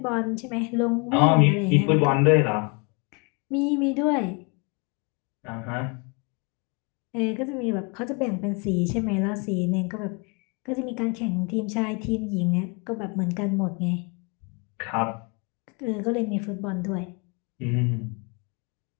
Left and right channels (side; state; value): right; quieter; 32.2 dB